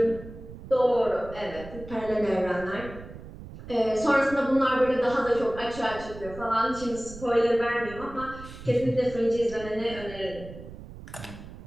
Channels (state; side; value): noise; right; rumble, 14 dB below the sound